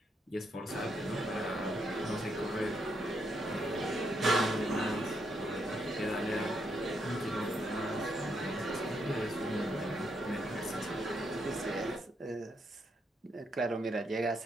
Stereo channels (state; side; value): normal; both; correlation 0.78